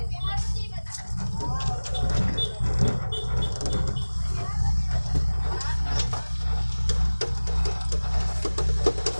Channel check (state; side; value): inverted; both; correlation -1.00